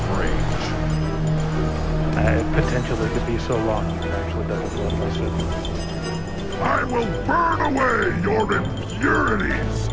range. Potentially could be so long you could actually double blood list it. I will burn away your impurities!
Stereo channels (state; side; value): identical; both; correlation 1.00